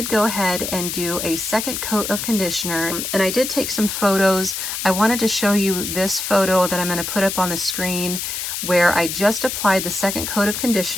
go ahead and do a second coat of conditioner, and I did take some photos. I wanted to show you this photo that I'm going to put up on the screen where I just applied the second coat of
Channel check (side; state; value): left; noise; hiss, 4 dB below the sound